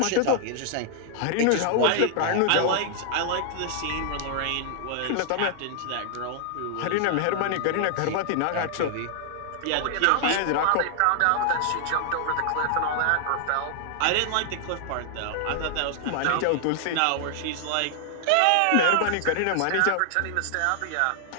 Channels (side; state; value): both; different; correlation 0.00